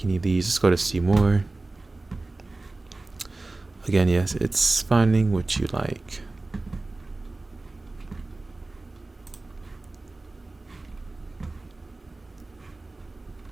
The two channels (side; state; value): left; quieter; 3.1 dB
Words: any of these. Let's go to see more. Again, yes, it's finding what you like.